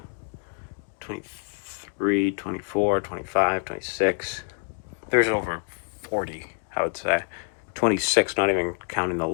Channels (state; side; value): silent; right; 60 dB below the other